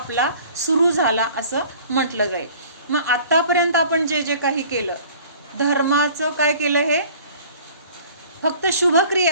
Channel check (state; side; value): inverted; both; correlation -0.49